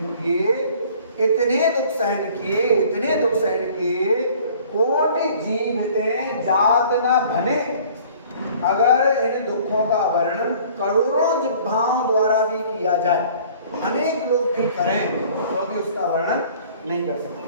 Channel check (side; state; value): both; inverted; correlation -0.52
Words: किए, इतने दुख सहन किए, इतने दुख सहन किए, कोटि जीवते जात न बने। अगर इन दुखों का वर्णन करोड़ों जिह्वाओं द्वारा भी किया जाए, अनेक लोग भी करें तो भी उसका वर्णन नहीं कर